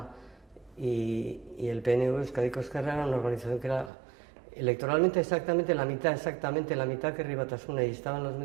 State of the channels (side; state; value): left; drops out; at 3.9 s